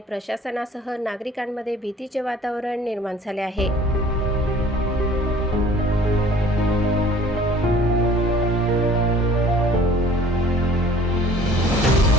प्रशासनासह नागरिकांमध्ये भीतीचे वातावरण निर्माण झाले आहे।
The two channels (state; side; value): normal; both; correlation 0.51